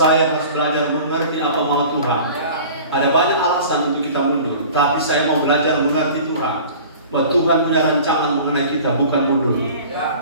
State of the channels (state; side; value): inverted; both; correlation -0.43